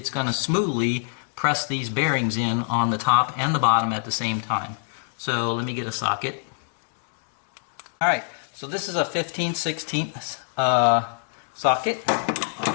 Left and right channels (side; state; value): right; silent; digital silence